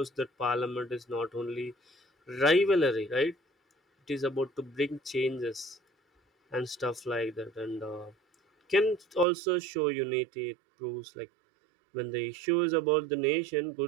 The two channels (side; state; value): left; drops out; at 9.2 s